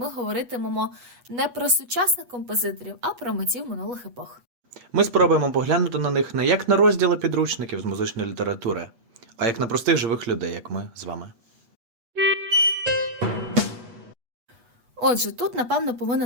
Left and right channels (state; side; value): late; left; 8.2 ms